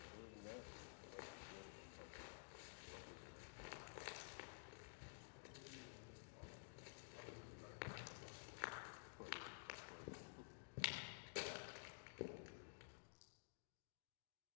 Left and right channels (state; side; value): silent; right; digital silence